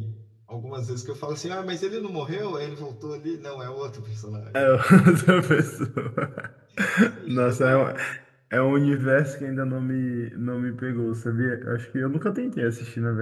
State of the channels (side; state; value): both; identical; correlation 1.00